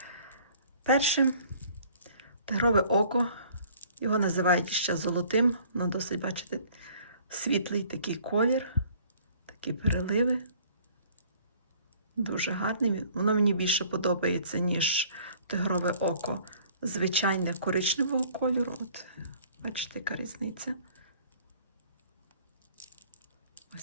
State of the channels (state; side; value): inverted; both; correlation -0.55